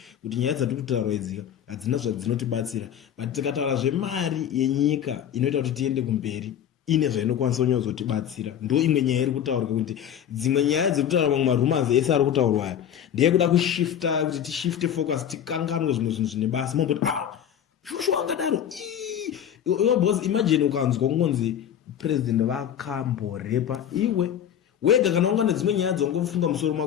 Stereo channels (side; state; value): right; quieter; 9.5 dB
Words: kuti nyaya dzatiri kutaura idzika hadzina zvadzinotibatsira but tikataura zvemari yenyika inoita kuti tiende kumberi ine zvainokwanisa kunyazotibatsira ndo imwe nyaya iri kutaurwa kuti dzimwe nyaya dziri kutaura mamwe marumanzi ese ari kutaurwa aya ndeye kuda kushifta kuti tishifte focus tikanganwe zvimwe zvinhu zvine basa mamboti shosho angadaro boss imagine ukanzwa kungonzi president vakamborepa iwe wega kana unga nedzimwe nyaya dzongofunga musoro